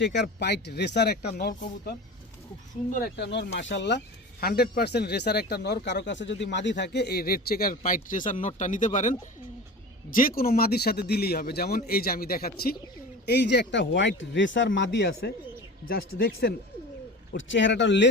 পাইট রেসার একটা নর কবুতর, খুব সুন্দর একটা নর, মাশাআল্লাহ 100% রেসার একটা নর। কারো কাছে যদি মাদি থাকে এই রেড চেকার পাইট রেসার নরটা নিতে পারেন। যে কোনো মাদির সাথে দিলেই হবে। যেমন এই যে আমি দেখাচ্ছি, এই যে একটা হোয়াইট রেসার মাদি আছে, জাস্ট দেখছেন ওর চেহারাটা,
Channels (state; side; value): normal; both; correlation 0.33